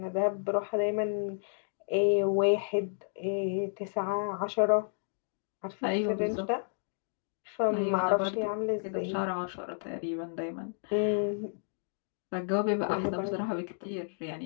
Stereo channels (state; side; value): silent; right; digital silence